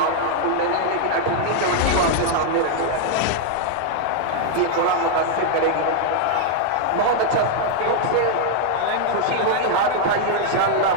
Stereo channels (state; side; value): different; both; correlation 0.00